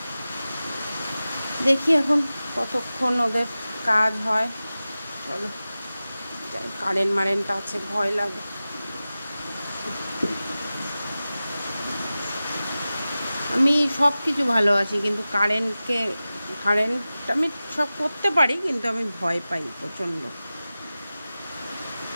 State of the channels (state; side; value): inverted; both; correlation -0.96